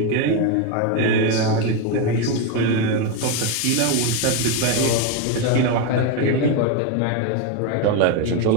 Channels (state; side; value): different; both; correlation 0.03